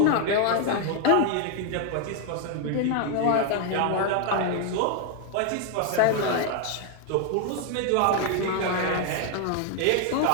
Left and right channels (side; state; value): both; different; correlation 0.00